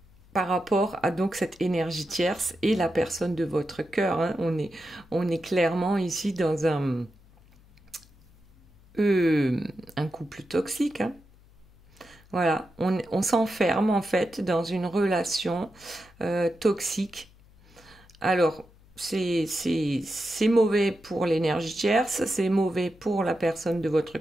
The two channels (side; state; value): left; noise; hum, 27 dB below the sound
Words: par rapport à donc cette énergie tierce et la personne de votre cœur. On est clairement ici dans un couple toxique. Voilà, on s'enferme en fait dans une relation toxique. Alors, c'est mauvais pour l'énergie tierce, c'est mauvais pour la personne de votre